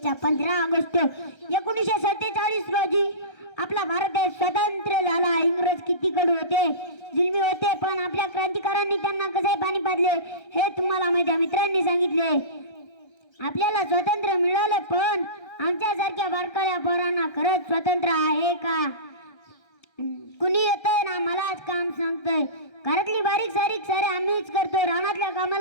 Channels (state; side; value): late; right; 1.3 ms